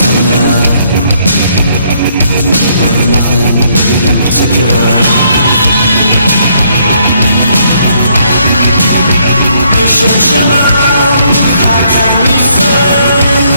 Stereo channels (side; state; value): both; inverted; correlation -0.69